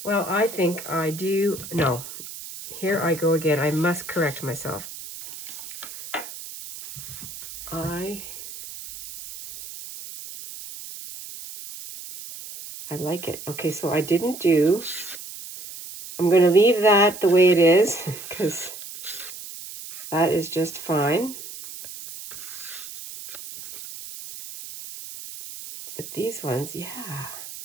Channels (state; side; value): noise; right; hiss, 12 dB below the sound